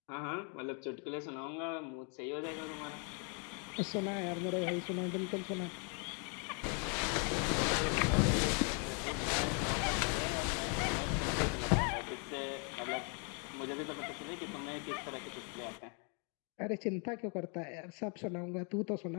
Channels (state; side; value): quieter; right; 38.5 dB